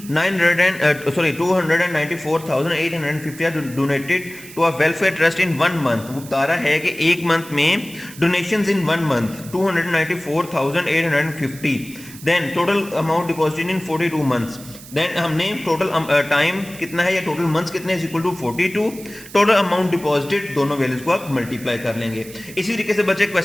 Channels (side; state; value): right; noise; hiss, 17 dB below the sound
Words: are donated to a welfare trust in 1 month। वो बता रहा है कि एक मंथ में donations in 1 month 294,850, then total amount deposited in 42 months, then हमने टोटल टाइम कितना है या टोटल मंथ्स कितने is equal to 42, total amount deposited, दोनों वैल्यूज को आप मल्टीप्लाई कर लेंगे। इसी तरीके से बच्चे